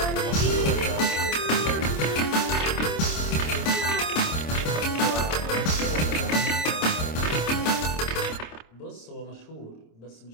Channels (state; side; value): late; right; 26 ms